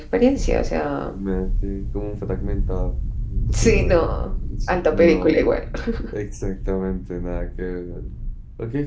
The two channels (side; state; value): both; identical; correlation 1.00